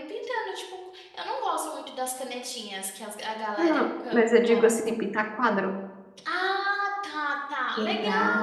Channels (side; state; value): both; identical; correlation 1.00